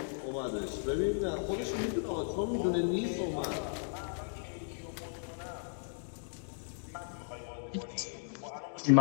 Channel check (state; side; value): silent; right; digital silence